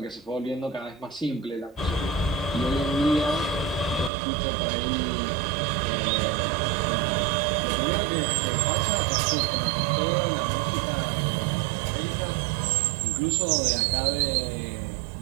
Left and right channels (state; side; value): drops out; left; at 4.1 s